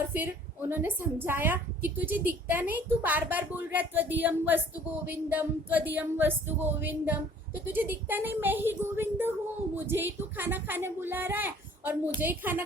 फिर उन्होंने समझाया कि तुझे दिखता नहीं, तू बार बार बोल रहा है त्वदीयम वस्तु गोविंदम, त्वदीयम वस्तु गोविंदम, तो तुझे दिखता नहीं मैं ही गोविंद हूँ, मुझे ही तू खाना खाने बुला रहा है और मुझे ही खाना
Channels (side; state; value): both; normal; correlation 0.54